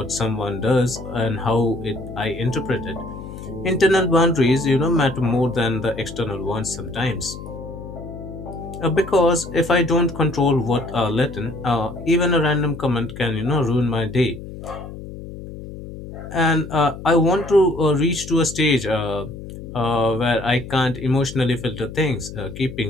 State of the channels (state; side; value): noise; left; hum, 12 dB below the sound